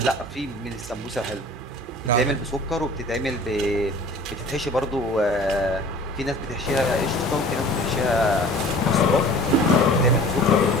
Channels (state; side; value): normal; both; correlation 0.45